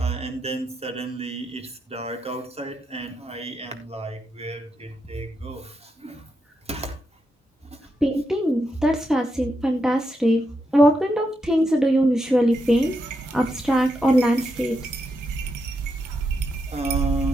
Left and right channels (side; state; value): both; normal; correlation 0.83